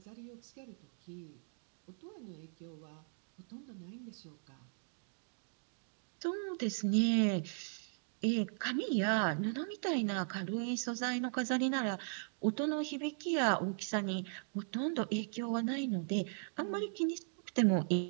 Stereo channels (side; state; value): left; silent; digital silence